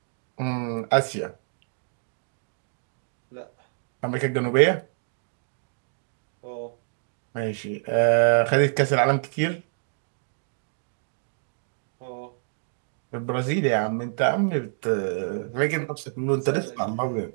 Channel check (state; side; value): silent; left; digital silence